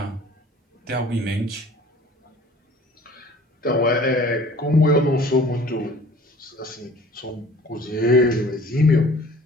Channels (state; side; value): normal; both; correlation 0.49